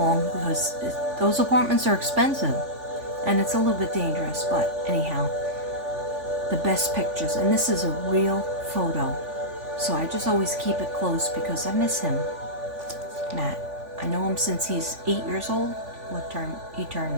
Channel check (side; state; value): left; late; 3.5 ms